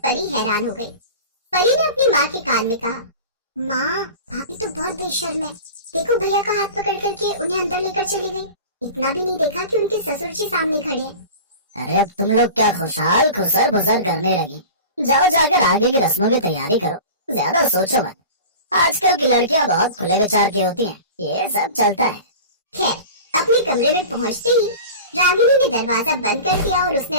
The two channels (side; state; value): both; inverted; correlation -0.36